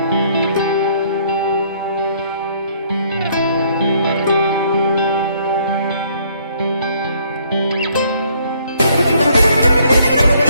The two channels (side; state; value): both; inverted; correlation -0.65